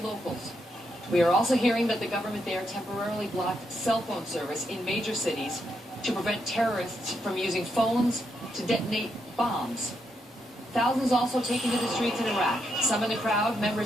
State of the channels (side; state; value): both; normal; correlation 0.80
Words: locals. We are also hearing that the government there temporarily blocked cell phone service in major cities to prevent terrorists from using phones to detonate bombs. Thousands also taken to the streets in Iraq. Some in the crowd,